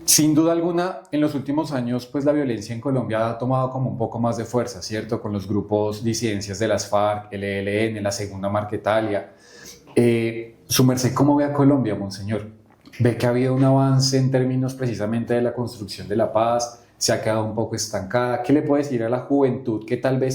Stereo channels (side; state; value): both; identical; correlation 1.00